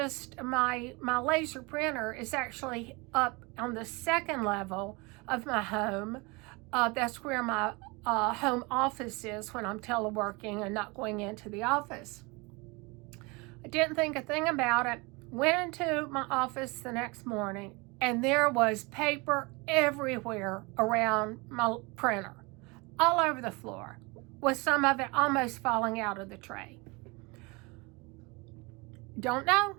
laser printer is actually up on the second level of my home. That's where my home office is when I'm teleworking and not going into the office. I didn't think a thing about it. Went into my office the next morning, and there was paper everywhere around my printer, all over the floor, with some of it almost falling out of the tray. Don't know.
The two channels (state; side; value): quieter; left; 26.9 dB